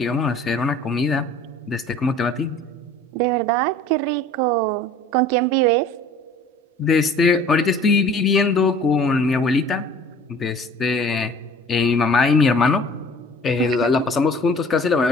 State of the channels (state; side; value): normal; both; correlation 0.48